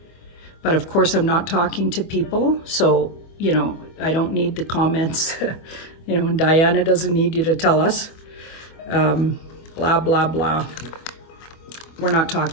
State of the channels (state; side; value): late; right; 25 ms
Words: But of course, I'm not talking to people, so, you know, I don't need the comments, you know, and Diana doesn't need you to tell us, blah, blah, blah. We're not